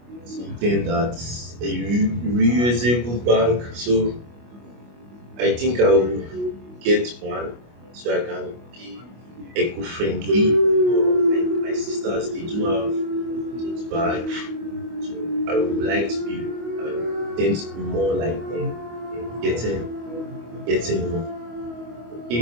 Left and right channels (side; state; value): left; late; 25 ms